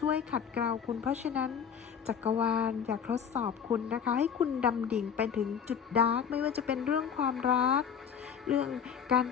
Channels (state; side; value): quieter; right; 7.5 dB